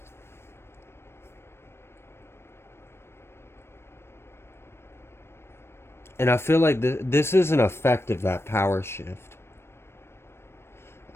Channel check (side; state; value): right; late; 0.12 ms